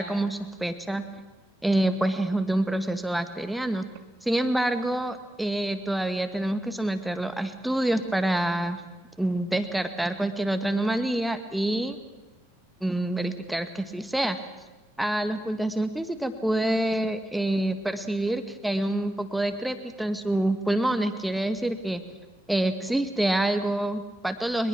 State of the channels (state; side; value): normal; both; correlation 0.91